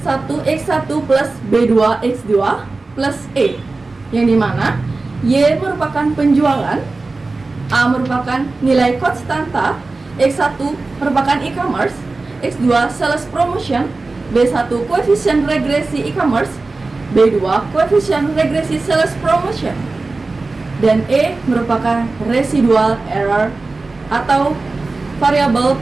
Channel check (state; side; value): quieter; left; 3.5 dB